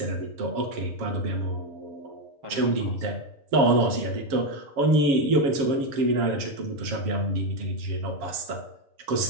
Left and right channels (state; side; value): late; left; 7.3 ms